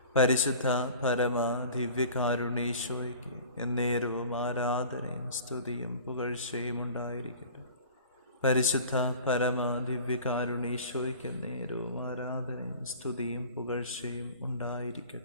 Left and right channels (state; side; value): inverted; both; correlation -0.42